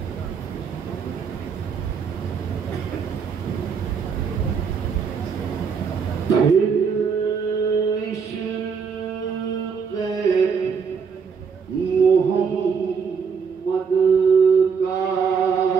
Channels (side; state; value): left; quieter; 6.0 dB